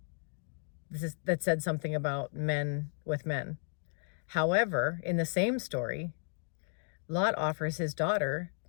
that said something about men with men. However, in the same story, Lot offers his daughter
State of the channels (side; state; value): right; silent; digital silence